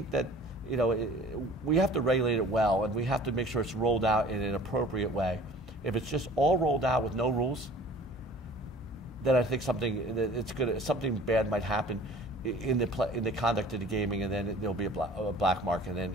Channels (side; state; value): both; normal; correlation 0.47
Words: that we have to regulate it well, and we have to make sure it's rolled out in an appropriate way. If it's just all rolled out with no rules, then I think something bad might happen in the conduct of the gaming, and then there'll be a black market,